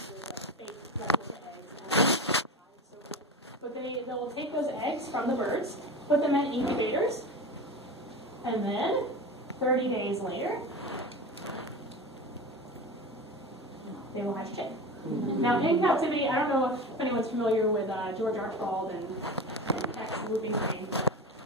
with fake replica eggs. But they will take those eggs from the birds, put them in incubators, and then 30 days later, they will hatch chick. Now, in captivity, I don't know if anyone's familiar with George Archibald and Tex Whooping Crane, but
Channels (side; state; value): both; normal; correlation 0.28